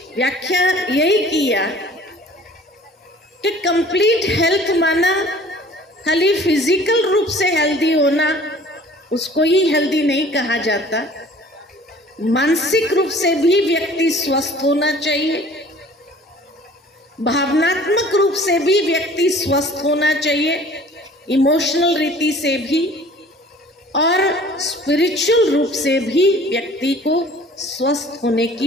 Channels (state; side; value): normal; both; correlation 0.49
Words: व्याख्या यही किया कि कंप्लीट हेल्थ माना खाली फिजिकल रूप से हेल्दी होना, उसको ही हेल्दी नहीं कहा जाता। मानसिक रूप से भी व्यक्ति स्वस्थ होना चाहिए, भावनात्मक रूप से भी व्यक्ति स्वस्थ होना चाहिए, इमोशनल रीति से भी, और स्पिरिचुअल रूप से भी व्यक्ति को स्वस्थ होने